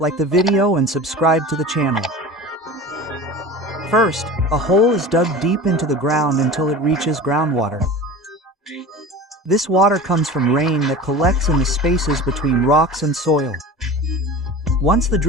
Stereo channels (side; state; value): both; normal; correlation 0.35